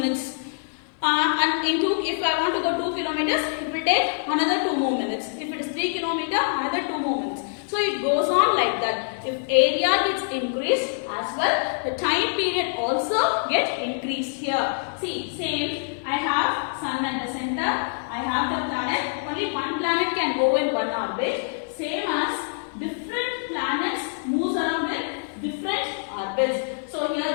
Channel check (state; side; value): silent; right; digital silence